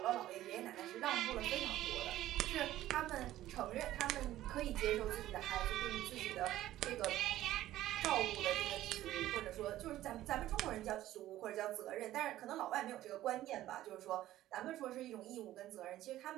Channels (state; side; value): quieter; left; 14.3 dB